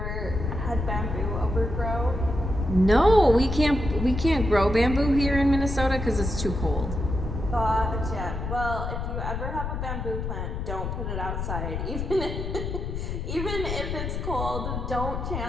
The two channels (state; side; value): noise; left; rumble, 4 dB below the sound